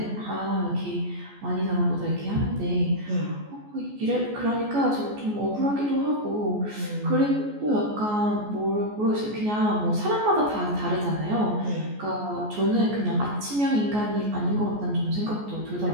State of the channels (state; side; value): late; left; 14 ms